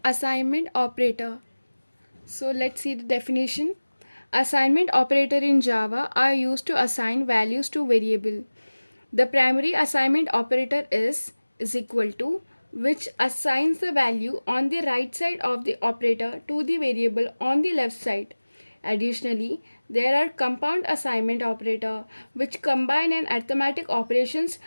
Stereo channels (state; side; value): inverted; both; correlation -1.00